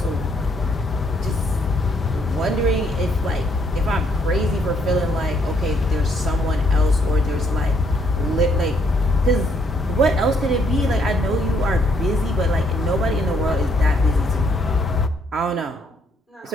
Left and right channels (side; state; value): both; normal; correlation 0.70